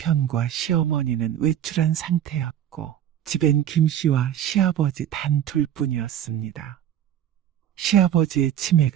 시어머니는 외출한 상태였고 집엔 김 씨와 시아버지 단 둘뿐이었습니다. 시아버지의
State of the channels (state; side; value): quieter; left; 10.6 dB